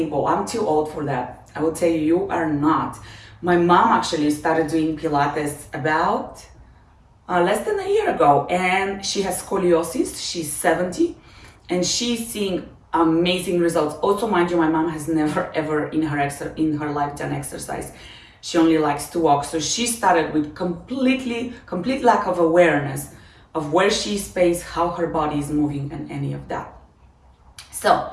well, I'm too old for that. I will tell you, you are not. My mom actually started doing Pilates about less than a year ago, and she has scoliosis. She's 70, and she's seeing amazing results. Also, mind you, my mom has never ever in her life done exercise. She only likes to walk. So she started with complete lack of awareness of where she's placed, how her body is moving, and any of that. So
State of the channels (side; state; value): both; identical; correlation 1.00